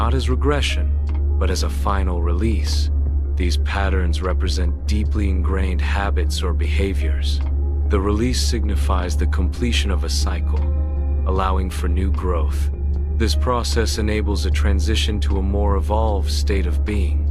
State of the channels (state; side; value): identical; both; correlation 1.00